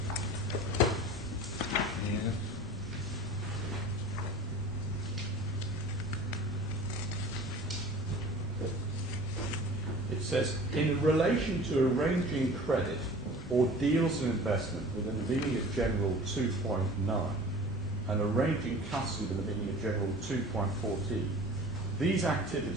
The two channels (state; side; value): normal; both; correlation 0.42